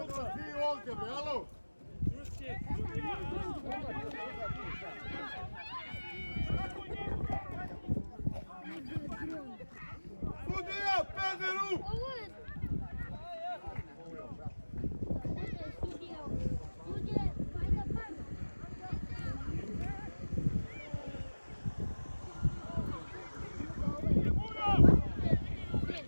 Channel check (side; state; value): both; inverted; correlation -1.00